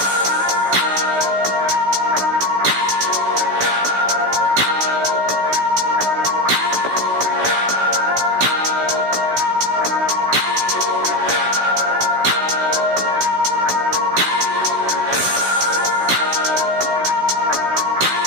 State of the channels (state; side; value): late; left; 16 ms